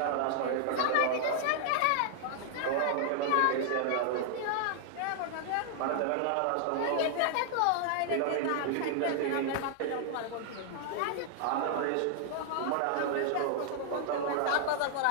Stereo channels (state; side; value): different; both; correlation -0.01